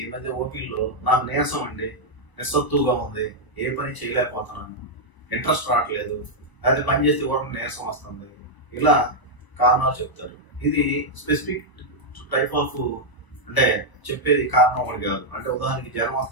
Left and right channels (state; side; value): late; right; 1.0 ms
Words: మధ్య ఓపీల్లో నాకు నీరసం అండి, నిస్సత్తుగా ఉంది, ఏ పని చేయలేకపోతున్నాను, ఇంట్రెస్ట్ రావట్లేదు, అది పని చేస్తే కూడా నీరసం వస్తుంది, ఇలా కారణాలు చెప్తారు. ఇది స్పెసిఫిక్ టైప్ ఆఫ్ అంటే చెప్పేది కారణం ఒకటి కాదు. అంటే ఉదాహరణకి జ్వరం